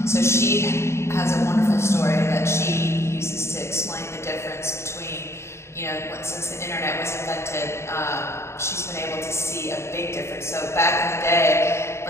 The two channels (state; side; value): late; right; 0.13 ms